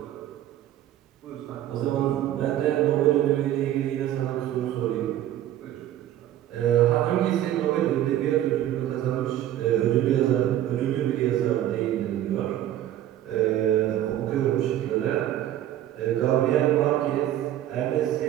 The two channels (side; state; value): left; quieter; 12.5 dB